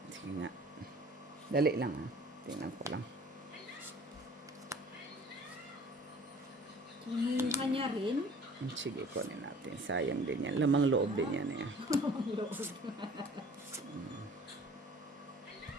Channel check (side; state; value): both; normal; correlation 0.49